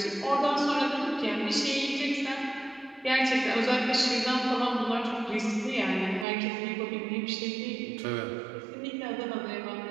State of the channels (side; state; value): left; drops out; at 6.2 s